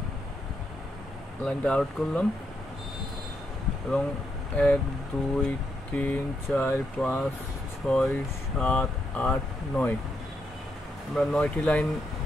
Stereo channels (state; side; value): normal; both; correlation 0.80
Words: লাইনটা আউট করলাম এবং 1 2 3 4 5 6 7 8 9 আমরা 9টি লাইন